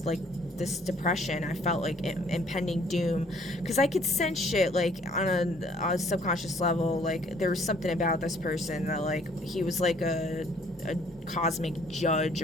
like, this depression. I felt like impending doom, because I could sense shit, like, on a subconscious level. Like, there was something about this person that, like, he was like a cosmic judge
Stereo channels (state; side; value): normal; both; correlation 0.60